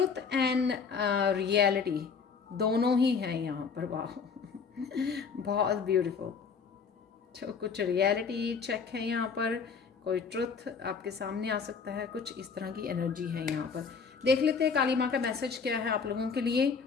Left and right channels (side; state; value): right; quieter; 5.7 dB